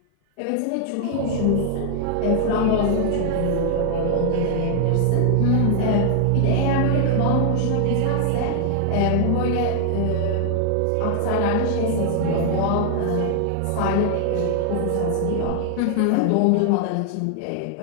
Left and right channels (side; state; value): both; different; correlation 0.00